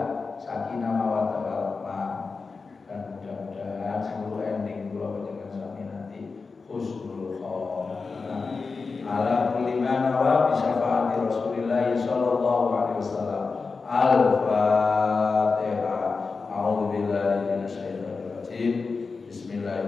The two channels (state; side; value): quieter; right; 4.5 dB